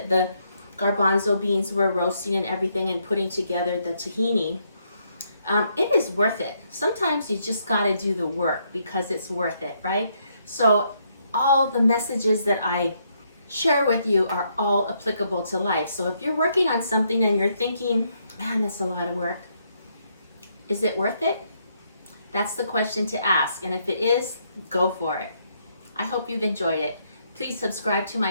the garbanzo beans were roasting and everything and putting together the tahini. It is worth it. Sometimes you just got to do the work because it's worth it, right? So all the messages that I share with you are all applicable to life. So if you're working on something and you're thinking, man, that's a lot of work, is it worth it? That's the question to ask. And if it is, go for it. I hope you've enjoyed it. Please subscribe to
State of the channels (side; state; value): both; inverted; correlation -0.74